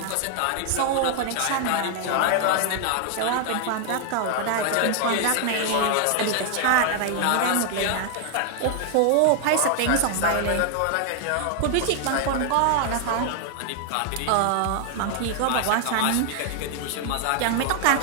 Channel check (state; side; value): different; both; correlation 0.00